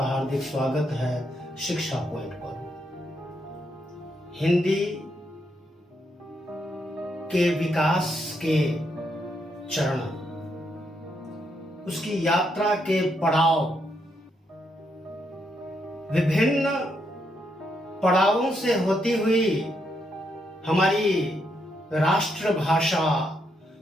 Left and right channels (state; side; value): normal; both; correlation 0.78